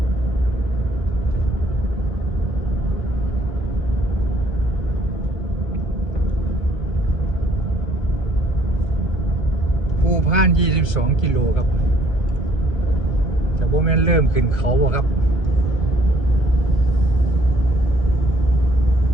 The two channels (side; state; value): right; late; 1.3 ms